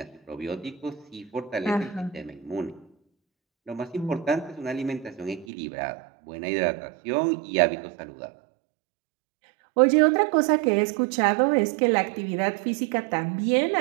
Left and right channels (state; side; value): drops out; left; at 5.5 s